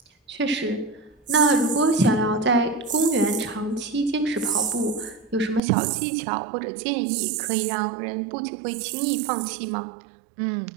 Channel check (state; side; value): drops out; left; at 5.6 s